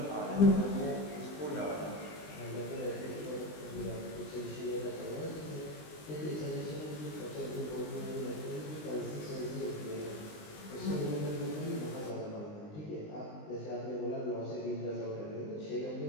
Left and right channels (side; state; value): right; late; 20 ms